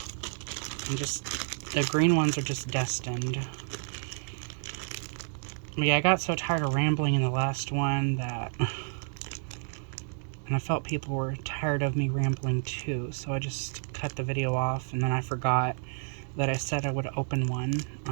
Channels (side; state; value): left; silent; 58 dB below the other